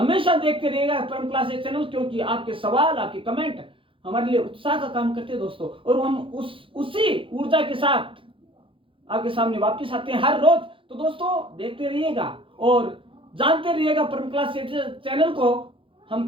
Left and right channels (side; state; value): left; late; 0.25 ms